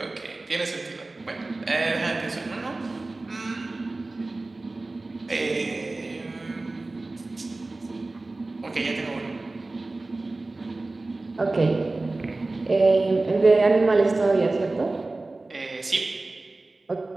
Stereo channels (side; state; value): left; quieter; 3.2 dB